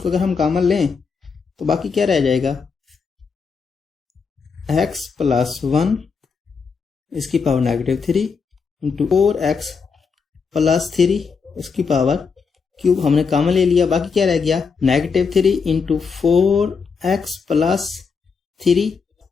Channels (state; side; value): quieter; right; 5.4 dB